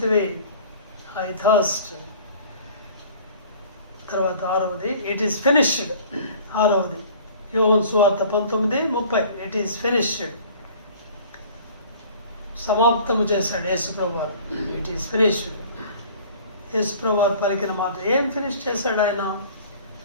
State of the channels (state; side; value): inverted; both; correlation -0.48